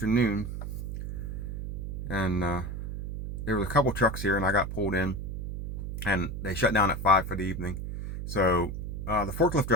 and there was a couple trucks here, and I got pulled in, and they shut down at 5 for the evening. So the forklift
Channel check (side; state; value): right; noise; hum, 6 dB below the sound